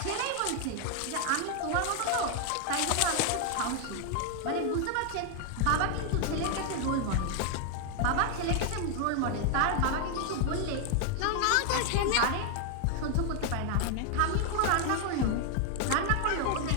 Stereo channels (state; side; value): different; both; correlation 0.00